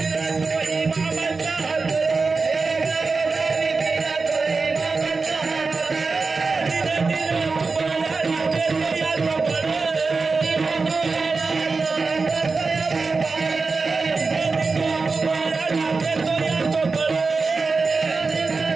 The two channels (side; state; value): left; quieter; 4.2 dB